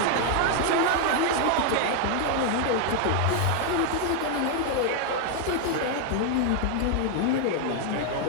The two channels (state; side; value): different; both; correlation 0.00